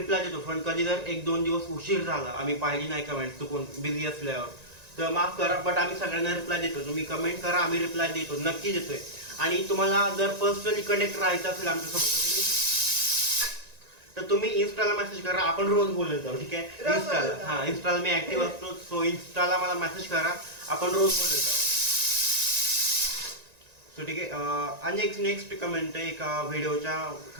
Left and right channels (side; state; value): left; late; 1.9 ms